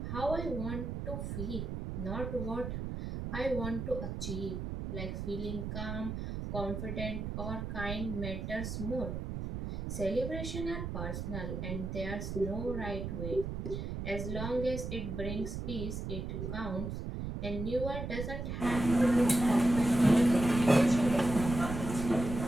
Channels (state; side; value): noise; right; rumble, 5 dB below the sound